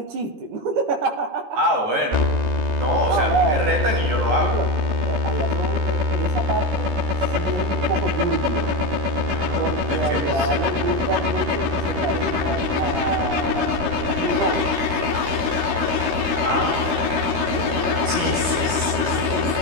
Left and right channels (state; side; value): late; left; 16 ms